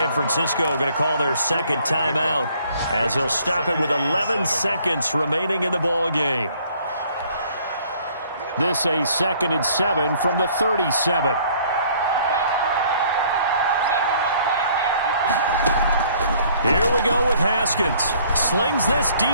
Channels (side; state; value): both; inverted; correlation -0.59